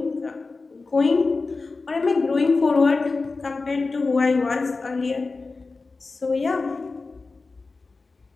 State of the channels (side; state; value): right; quieter; 3.9 dB